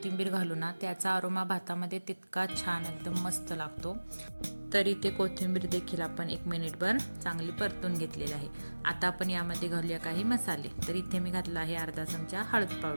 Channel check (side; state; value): both; inverted; correlation -1.00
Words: घालू ना त्याचा अरोमा भातामध्ये तितका छान एकदम मस्त लागतो। तर इथे कोथिंबीर देखील आपण 1 मिनिटभर चांगली परतून घेतलेली आहे। आता आपण यामध्ये घालूया काही मसाले। तर इथे मी घातला आहे अर्धा चमचा हळद